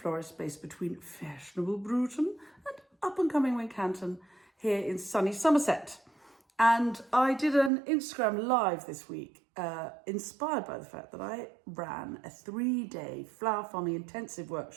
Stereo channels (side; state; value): left; drops out; at 7.7 s